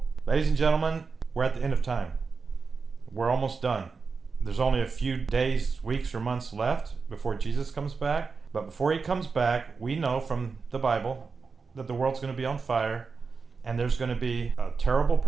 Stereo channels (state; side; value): quieter; left; 4.8 dB